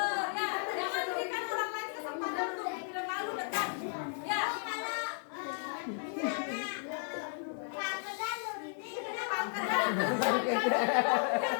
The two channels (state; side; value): silent; right; 55 dB below the other